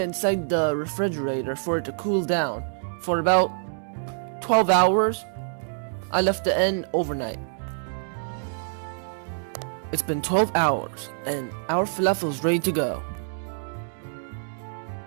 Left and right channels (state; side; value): silent; left; digital silence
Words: inside the refrigerator for it to cool down for about 12 hours. I left it in overnight. It's been 12 hours and our falafel is ready to go.